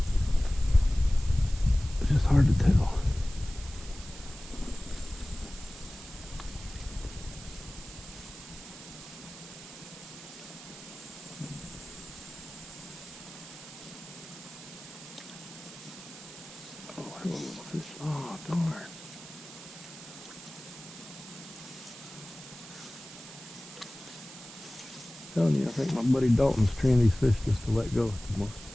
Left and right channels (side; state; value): right; noise; hiss, 15 dB below the sound